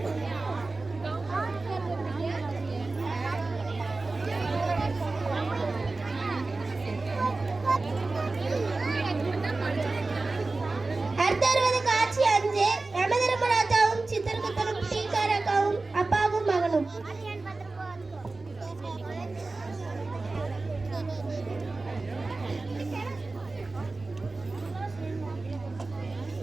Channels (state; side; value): quieter; left; 3.5 dB